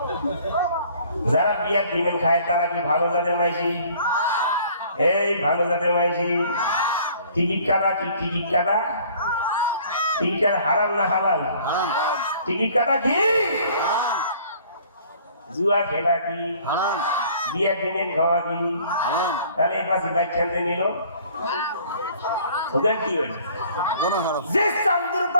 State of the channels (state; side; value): inverted; both; correlation -0.54